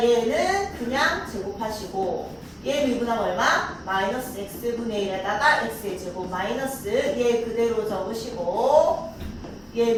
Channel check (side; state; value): both; identical; correlation 1.00